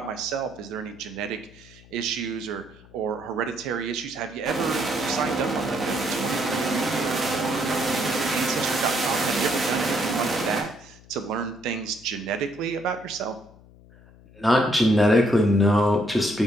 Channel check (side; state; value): left; noise; hum, 24 dB below the sound